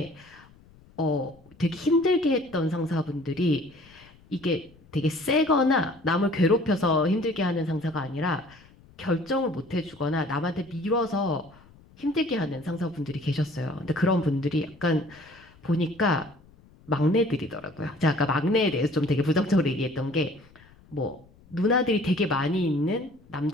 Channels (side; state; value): left; noise; rumble, 26 dB below the sound